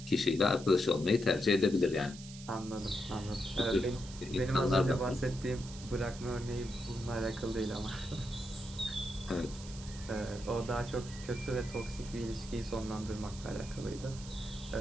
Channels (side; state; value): right; noise; hiss, 15 dB below the sound